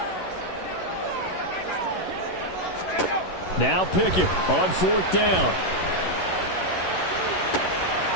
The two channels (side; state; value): right; late; 11 ms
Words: Now Pickett on 4th down.